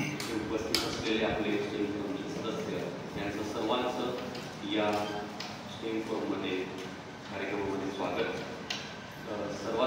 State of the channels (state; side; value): identical; both; correlation 1.00